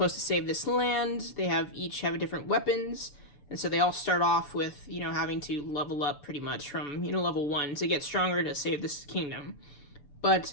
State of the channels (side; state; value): right; late; 7.0 ms